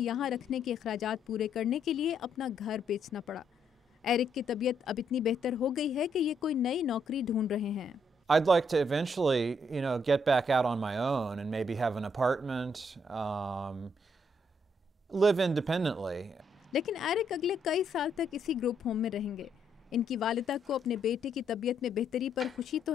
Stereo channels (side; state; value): both; normal; correlation 0.74